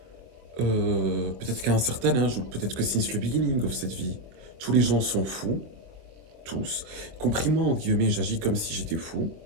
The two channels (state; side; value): late; left; 24 ms